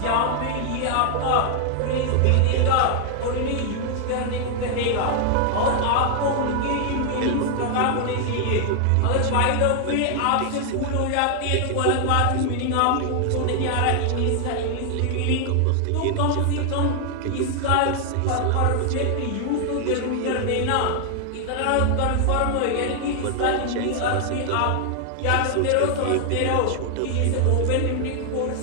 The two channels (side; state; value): both; different; correlation 0.00